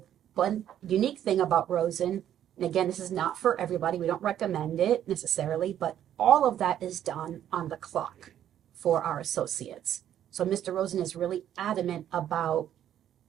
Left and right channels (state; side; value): quieter; left; 10.7 dB